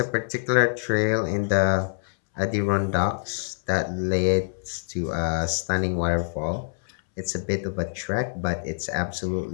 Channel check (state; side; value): silent; right; 61 dB below the other